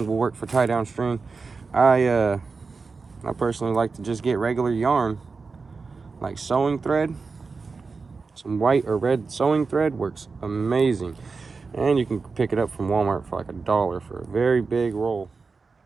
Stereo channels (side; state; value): left; quieter; 4.5 dB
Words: will work for tie down string. I personally like to just get regular yarn, like sewing thread. Some white or red sewing thread works amazing. And you can pick it up from Walmart for like $1 for a very big roll.